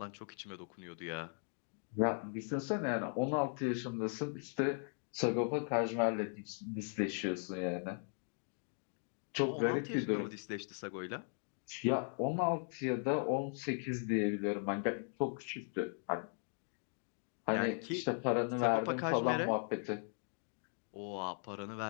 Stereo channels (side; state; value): right; silent; 52 dB below the other